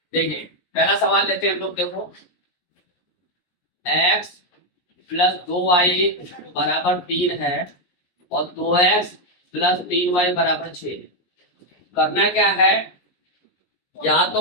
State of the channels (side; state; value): right; late; 17 ms